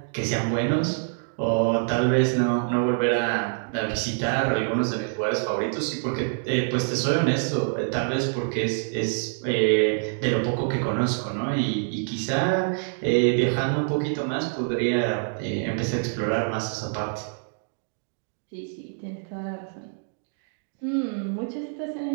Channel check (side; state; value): left; silent; digital silence